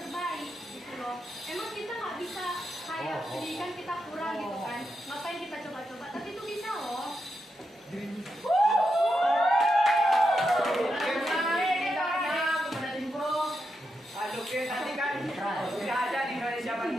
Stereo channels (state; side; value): normal; both; correlation 0.85